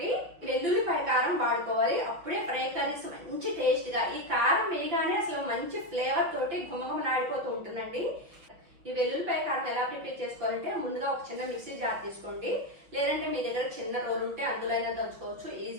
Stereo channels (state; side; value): late; left; 5.6 ms